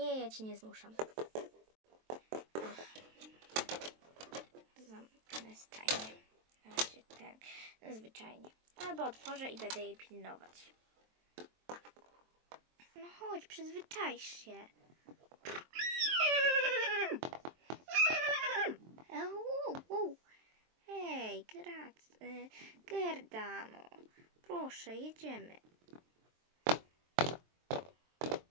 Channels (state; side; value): late; left; 23 ms